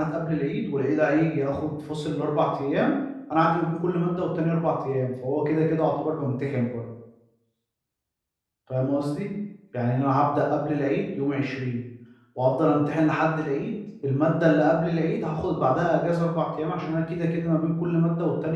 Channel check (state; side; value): identical; both; correlation 1.00